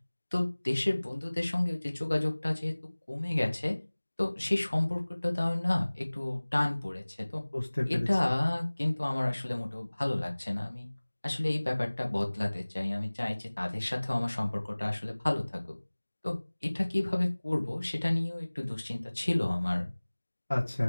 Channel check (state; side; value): inverted; both; correlation -1.00